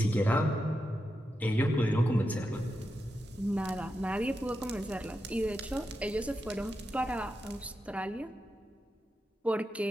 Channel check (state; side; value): normal; both; correlation 0.88